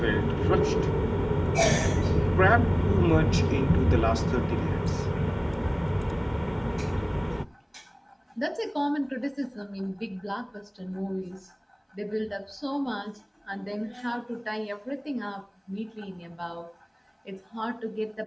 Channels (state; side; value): identical; both; correlation 1.00